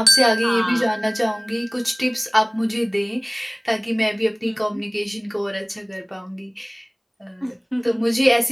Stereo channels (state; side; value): identical; both; correlation 1.00